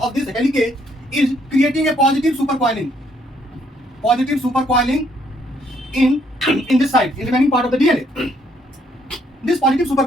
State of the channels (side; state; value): both; normal; correlation 0.68